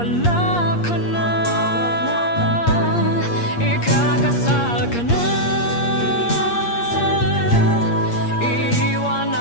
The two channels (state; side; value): late; right; 8.5 ms